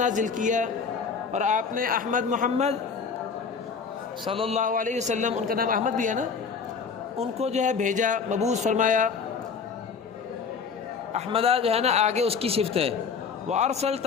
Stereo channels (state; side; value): quieter; right; 5.7 dB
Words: کیا اور آپ نے احمد محمد صلی اللہ علیہ وسلم، ان کا نام احمد بھی ہے نا، ان کو جو ہے بھیجا، مبعوث فرمایا. احمدہ جو ہے نا آگے اس کی صفت ہے. وارسلت